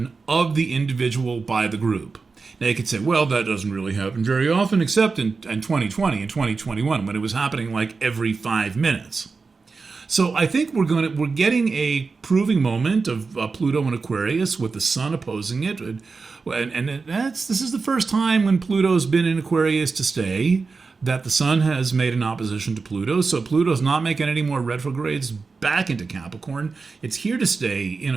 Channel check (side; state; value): left; quieter; 4.5 dB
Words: of the individual by the group. Now you could say, well, that doesn't really happen very often, except in 2020 and 2021, when it was happening like every 5 minutes. So I think we're getting a proving moment of Pluto and Aquarius with the Sun opposing it, and this is the first time when Pluto's been in Aquarius to stay that the Sun has made an opposition to Pluto. So Pluto's not making any more retrogrades back into Capricorn. It's here to stay in